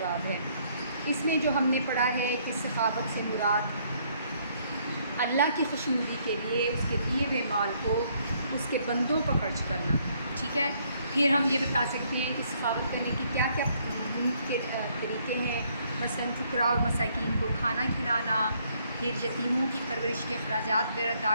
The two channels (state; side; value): inverted; both; correlation -0.68